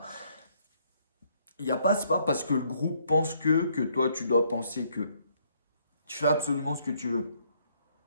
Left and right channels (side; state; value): both; inverted; correlation -0.68